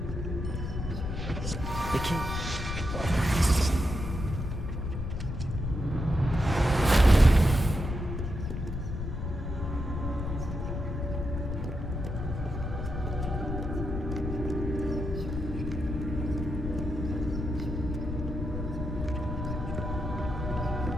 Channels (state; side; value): noise; left; rumble, 4 dB below the sound